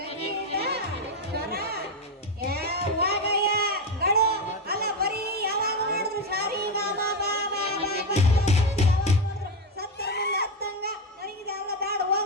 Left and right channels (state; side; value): normal; both; correlation 0.11